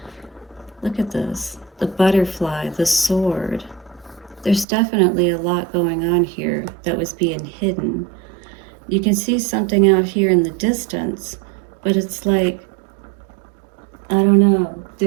Look at this. The butterfly, the sword. There's definitely a lot going on here that was being hidden. You can see something out here in the distance, but it's like, I don't know,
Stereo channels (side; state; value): left; drops out; at 4.7 s